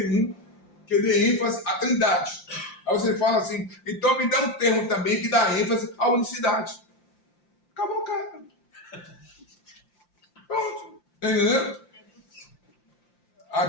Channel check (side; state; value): right; late; 5.8 ms